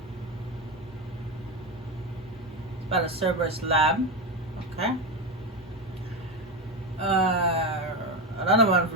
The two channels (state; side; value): normal; both; correlation 0.15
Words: About a Cerberus lab. Okay. Another one